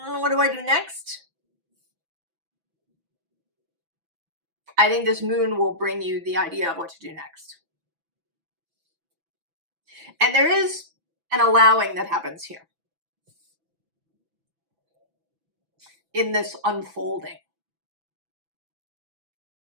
what do I do next? I think this moon will bring you the idea of what to do next. And there is an allowing that happens here in this unfolding.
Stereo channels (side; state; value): left; late; 6.0 ms